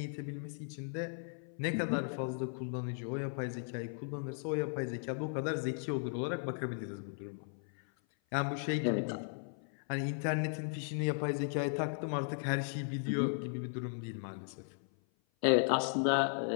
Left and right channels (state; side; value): silent; right; 53 dB below the other